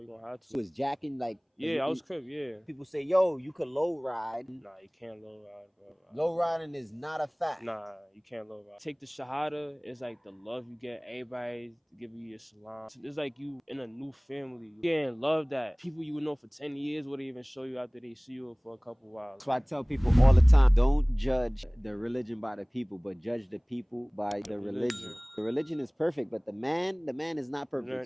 going to have to. You was jacking like... Yeah, I was Crip, yeah. People say, yo, you could low ride. Nah, you can't low ride, bro. Low riding is not a fact. Nah, you can't low ride. Take the Shahada, it's like the love you get. Everybody give you your salam. It's like you in a new family. You getting love that people you would know for 10 years wouldn't even show you after they see you for a couple hours. So I tell people all the time, don't judge the religion by the people, but judge the people by the religion. The religion is perfect, but the man is not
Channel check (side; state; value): both; identical; correlation 1.00